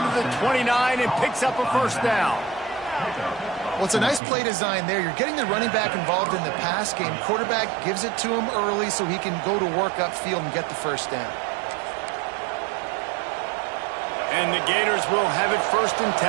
to the 29 and picks up a 1st down. Well, it's a nice play design there. You're getting the running back involved in the pass game. Quarterback gives it to him early so he can go to work upfield and get the 1st down. And the Gators will have it 1st and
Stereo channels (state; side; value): drops out; left; at 4.2 s